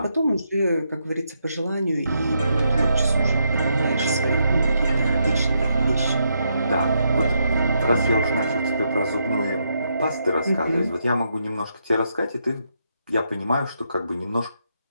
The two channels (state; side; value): inverted; both; correlation -0.79